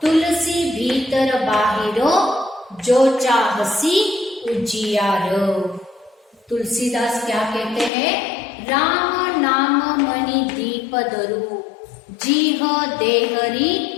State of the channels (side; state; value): right; drops out; at 7.9 s